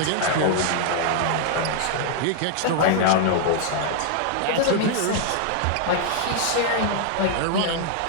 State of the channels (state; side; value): different; both; correlation 0.00